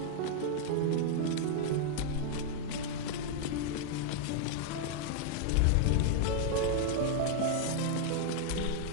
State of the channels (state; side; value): different; both; correlation -0.01